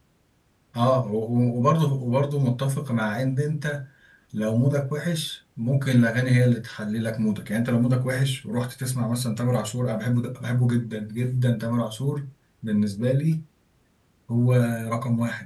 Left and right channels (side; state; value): both; identical; correlation 1.00